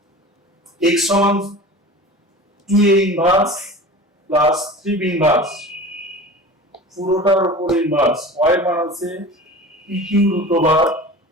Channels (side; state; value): both; normal; correlation 0.36